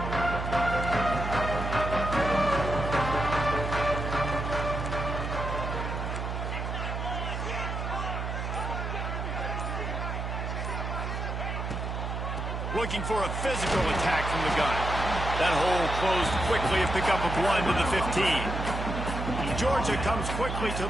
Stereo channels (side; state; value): right; noise; hum, 3 dB below the sound